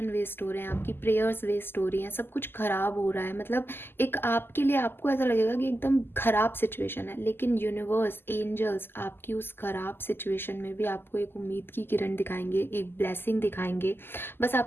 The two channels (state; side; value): late; right; 0.11 ms